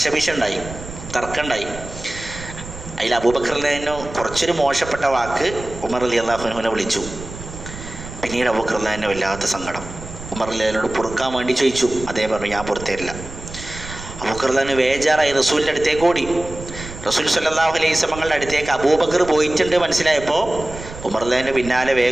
തർക്കമുണ്ടായി. അതിൽ അബൂബക്കർ റളിയല്ലാഹു അൻഹു കുറച്ചൊരു മോശപ്പെട്ട വാക്ക് ഉമർ റളിയല്ലാഹു അൻഹുവിനെ വിളിച്ചു. പിന്നീട് അബൂബക്കർ റളിയല്ലാഹു അൻഹു വല്ലാത്ത സങ്കടം ഉമർ റളിയല്ലാഹു അൻഹുവിനോട് പൊറുക്കാൻ വേണ്ടി ചോദിച്ചു. അദ്ദേഹം പറഞ്ഞു, ഞാൻ പുറത്തേരില്ല. അബൂബക്കർ റളിയല്ലാഹു അൻഹു വേജാറായി റസൂലിൻ്റെ അടുത്തേക്ക് ഓടി. റസൂൽ സ്വല്ലല്ലാഹു അലൈഹി വസല്ലമയുടെ അടുത്തേക്ക് അബൂബക്കർ പോയിട്ടുണ്ട് മനസ്സിലായപ്പോൾ ഉമർ റളിയല്ലാഹു അൻഹു പിന്നാലെ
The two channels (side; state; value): right; noise; rumble, 13 dB below the sound